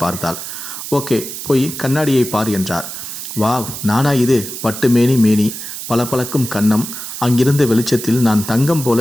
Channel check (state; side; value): noise; right; hiss, 8 dB below the sound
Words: பார்த்தாள். ஓகே, போய் கண்ணாடியை பார் என்றார். வாவ், நானா இது? பட்டு மேனி, பளபளக்கும் கன்னம். அங்கிருந்த வெளிச்சத்தில் நான் தங்கம்